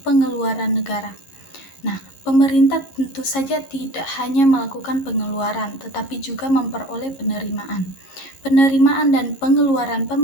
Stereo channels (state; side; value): late; right; 11 ms